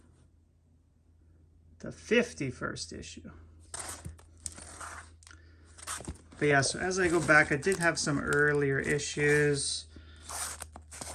The 51st issue. But yeah, so as I go back, I did have some earlier issues.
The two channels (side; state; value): both; identical; correlation 1.00